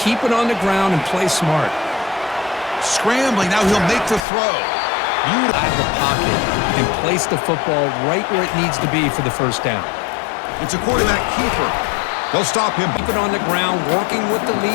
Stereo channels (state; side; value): drops out; right; at 4.2 s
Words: it on the ground and play smart. Scrambling. Now he'll make the throw. Out of the pocket and place the football right where it needs to be for the 1st down. It's a quarterback keeper. They'll stop him. Keep it on the ground, working with the